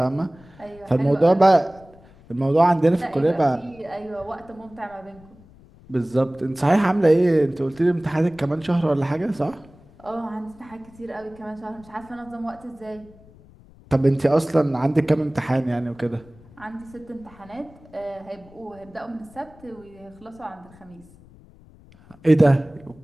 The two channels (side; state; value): left; noise; rumble, 25 dB below the sound